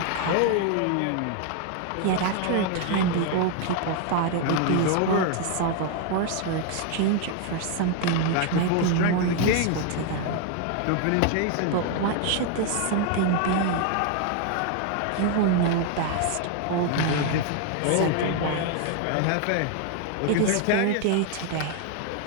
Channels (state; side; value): different; both; correlation 0.00